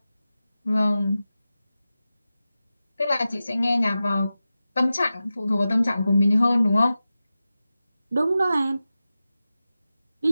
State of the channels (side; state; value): both; inverted; correlation -0.94